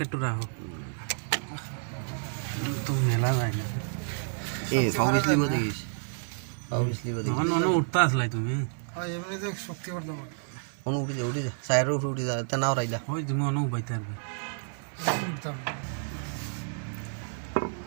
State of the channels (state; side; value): silent; left; 56 dB below the other